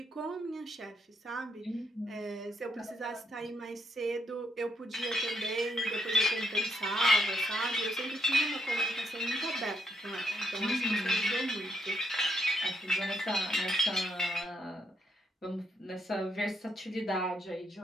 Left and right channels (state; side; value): normal; both; correlation 0.76